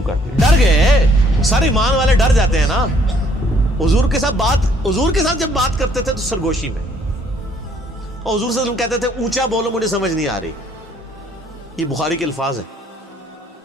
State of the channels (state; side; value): normal; both; correlation 0.64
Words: کر دی، ڈر گئے، سارے ایمان والے ڈر جاتے ہیں نا، حضور کے ساتھ جب بات کرتے تھے تو سرگوشی میں، اور حضور صلی اللہ علیہ وسلم کہتے تھے اونچا بولو مجھے سمجھ نہیں آ رہی، یہ بخاری کے الفاظ ہیں،